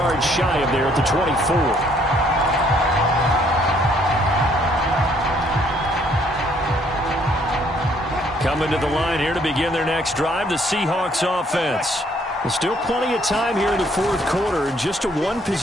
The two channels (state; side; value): normal; both; correlation 0.65